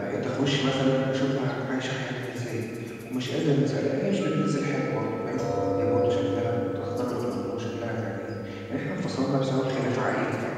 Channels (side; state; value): both; identical; correlation 1.00